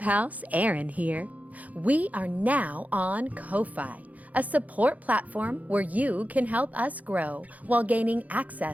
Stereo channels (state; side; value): late; left; 0.075 ms